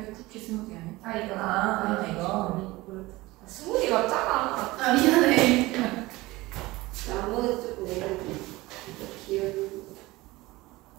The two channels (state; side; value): quieter; left; 20.1 dB